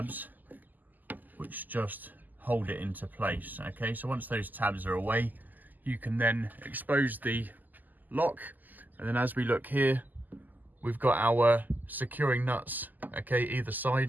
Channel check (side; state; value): left; late; 0.084 ms